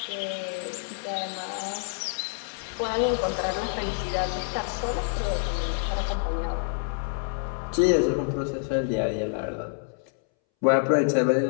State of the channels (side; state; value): right; silent; 60 dB below the other